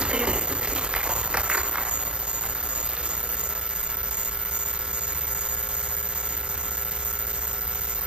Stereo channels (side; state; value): left; late; 0.050 ms